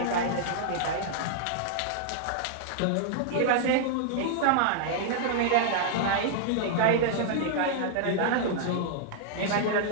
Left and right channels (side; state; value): both; different; correlation -0.01